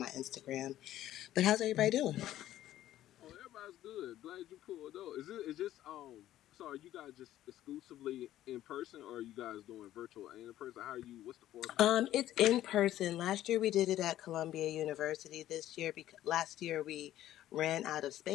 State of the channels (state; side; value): quieter; right; 13.3 dB